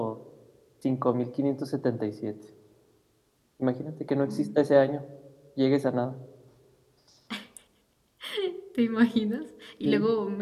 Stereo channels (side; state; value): both; identical; correlation 1.00